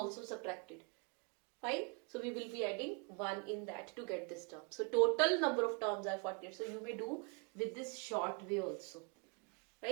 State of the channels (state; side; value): quieter; left; 33.4 dB